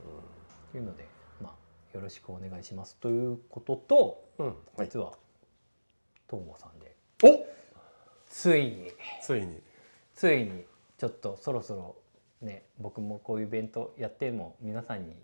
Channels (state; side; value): inverted; both; correlation -1.00